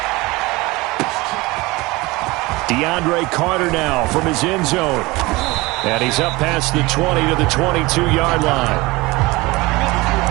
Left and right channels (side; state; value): left; quieter; 22.1 dB